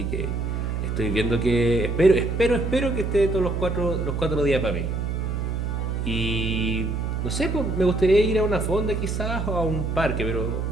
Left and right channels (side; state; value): right; noise; hum, 1 dB below the sound